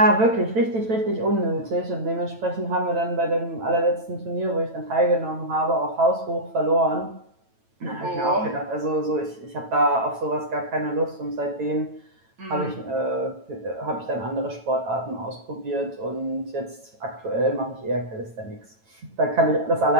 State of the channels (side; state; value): left; late; 9.0 ms